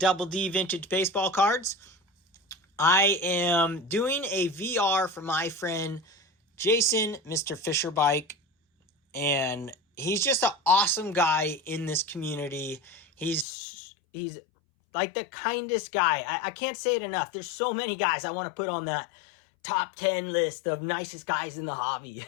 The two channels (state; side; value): drops out; right; at 13.5 s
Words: D Vintage Baseball Cards. I am doing a VR for my friend Jason, Mr. Fisher Bike, and he's just an awesome guy in this community. He's like the kindest guy. I can't say it enough. There's so many guys I want to put on that top 10 list of nicest guys in the hobby,